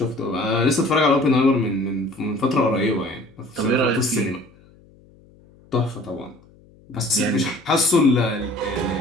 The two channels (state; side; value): noise; left; hum, 27 dB below the sound